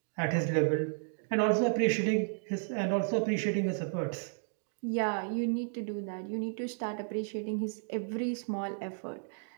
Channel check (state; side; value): silent; left; digital silence